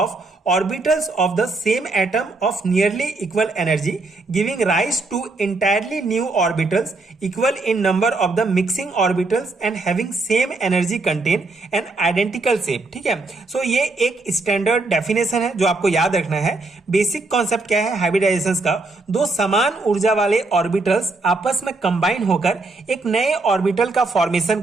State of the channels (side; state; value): left; quieter; 3.4 dB